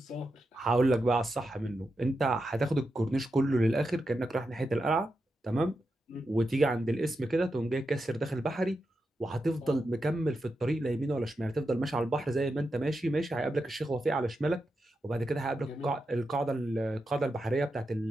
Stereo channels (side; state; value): both; normal; correlation 0.87